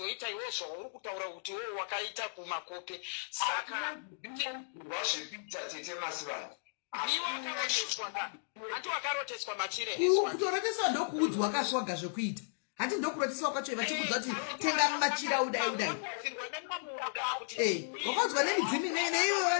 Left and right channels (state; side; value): silent; right; digital silence